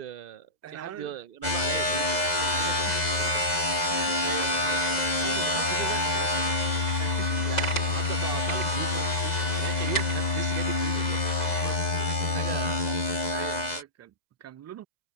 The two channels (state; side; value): late; right; 2.0 ms